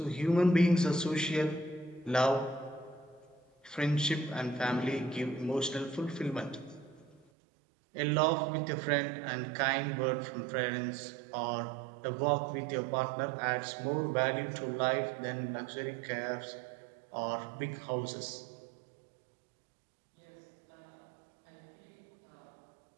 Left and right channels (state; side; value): drops out; left; at 7.2 s